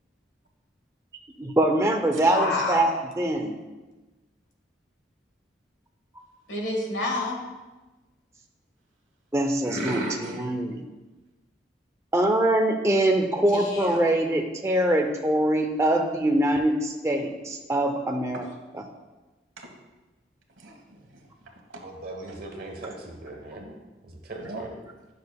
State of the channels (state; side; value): normal; both; correlation 0.64